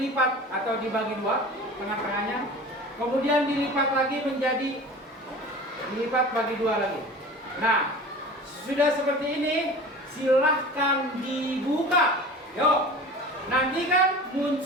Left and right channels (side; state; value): both; normal; correlation 0.38